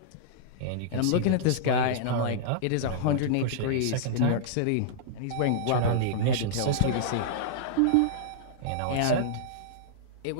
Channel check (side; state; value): both; different; correlation -0.02